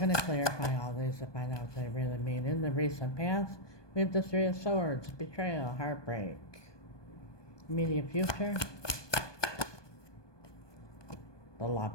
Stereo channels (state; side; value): late; right; 1.2 ms